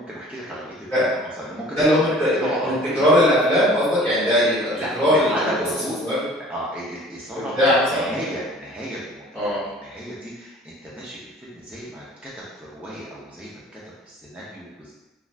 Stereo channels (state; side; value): normal; both; correlation 0.48